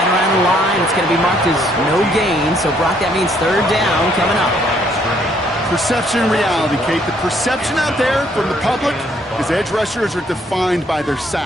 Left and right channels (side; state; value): both; normal; correlation 0.67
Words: around the line. It's going to be marked as no gain. So, Brock, that means third down coming up. Perception and reality, Kate. The perception out there from the public is edge rushers are defined by their